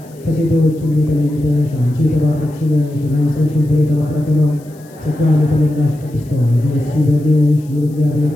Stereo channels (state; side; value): noise; left; hiss, 28 dB below the sound